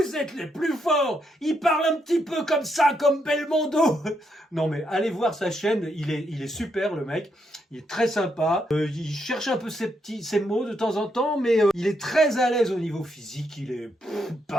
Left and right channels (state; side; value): normal; both; correlation 0.78